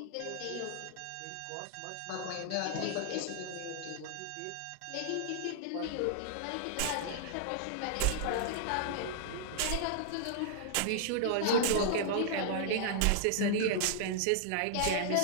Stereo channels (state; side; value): different; both; correlation -0.01